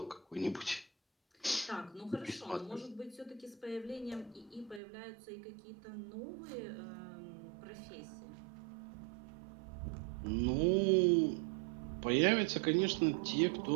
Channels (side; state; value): left; drops out; at 4.8 s